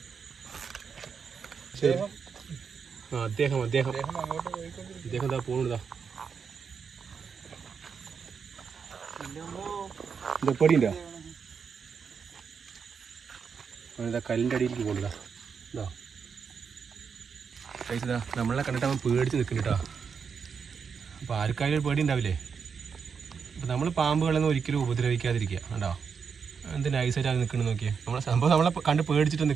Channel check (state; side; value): quieter; left; 6.2 dB